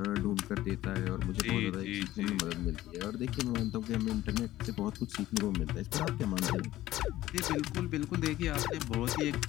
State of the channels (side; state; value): right; quieter; 15.1 dB